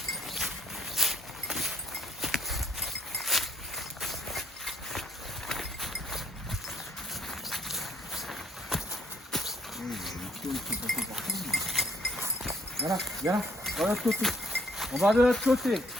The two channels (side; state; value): both; normal; correlation 0.65